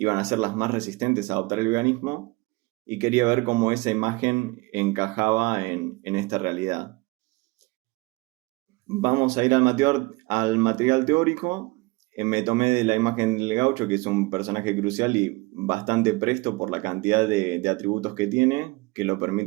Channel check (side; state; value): left; quieter; 23.8 dB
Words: a ser las más resistentes a adoptar el veganismo, y quería ver cómo esa imagen encajaba en esta realidad. Vamos a ir al material teórico. Me tomé de la imagen del gaucho, que es un personaje crucial y bastante presto por la cantidad de atributos que tiene, que lo